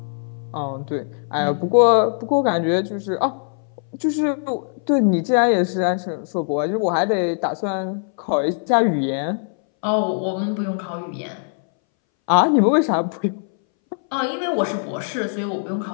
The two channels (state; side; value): silent; right; 62 dB below the other